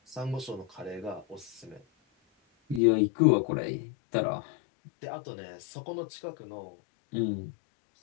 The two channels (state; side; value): drops out; right; at 2.8 s